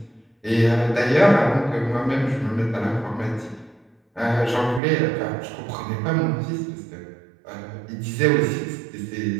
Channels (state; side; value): drops out; left; at 4.8 s